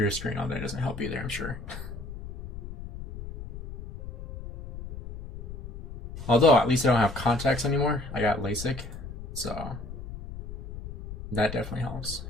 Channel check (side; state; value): left; noise; rumble, 11 dB below the sound